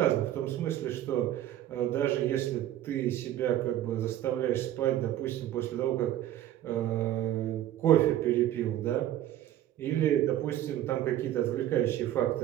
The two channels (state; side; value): quieter; left; 12.6 dB